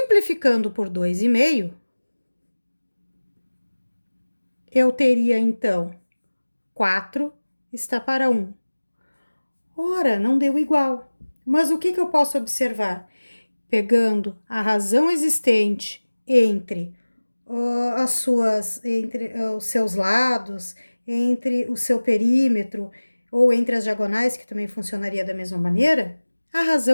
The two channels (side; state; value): both; inverted; correlation -1.00